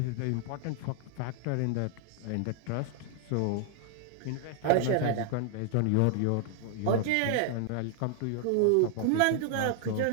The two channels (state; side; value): different; both; correlation 0.00